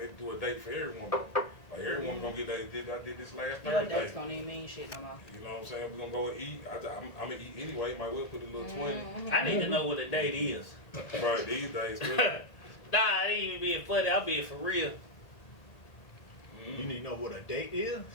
do a date for every woman. Like, every woman gonna get that. I did this last Thursday. Your dates don't even mean shit no more. You know what I'm saying? We're gonna go and eat. I'm gonna eat anyway. Might well put a little 20. I need to know what a date is. Right, these days. Really. Nah, I ain't even being funny. I'm being for real. You need to know what a date is?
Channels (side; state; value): right; late; 1.8 ms